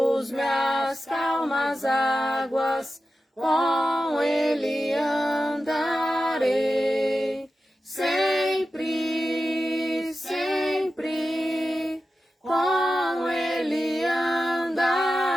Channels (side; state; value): both; normal; correlation 0.92